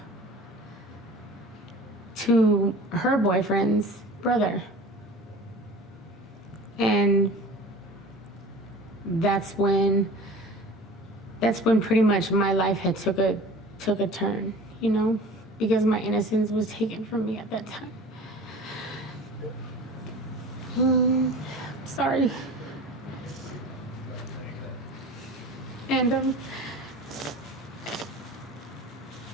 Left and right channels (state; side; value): normal; both; correlation 0.40